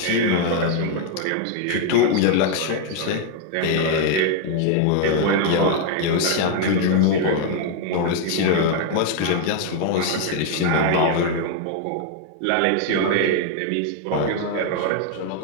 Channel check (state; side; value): different; both; correlation 0.00